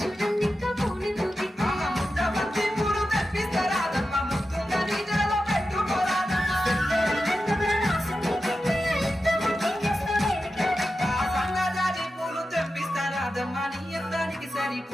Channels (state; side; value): normal; both; correlation 0.91